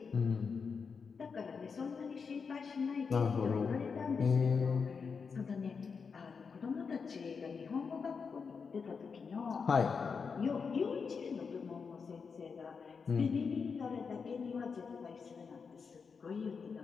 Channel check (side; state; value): right; quieter; 5.5 dB